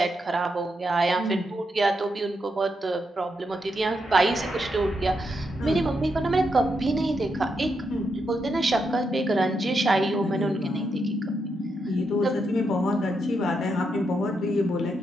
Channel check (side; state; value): both; normal; correlation 0.82